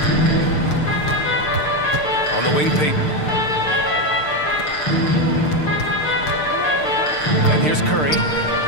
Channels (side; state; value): right; late; 6.6 ms